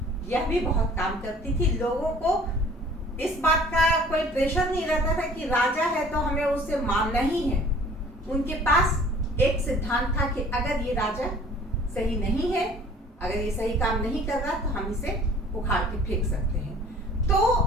यह भी बहुत काम करती थी। लोगों को इस बात का कोई प्रेशर नहीं रहता था कि राजा है तो हमें उससे मानना ही है। उनके पास एक सिद्धांत था कि अगर ये राजा सही नहीं है, अगर ये सही काम नहीं कर रहा तो हम इसे उखाड़ के फेंक सकते हैं।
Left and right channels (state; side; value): normal; both; correlation 0.51